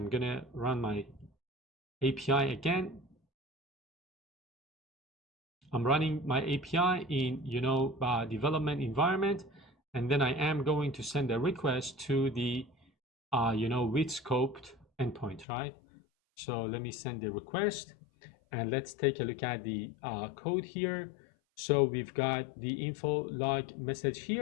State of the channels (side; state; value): right; drops out; at 15.5 s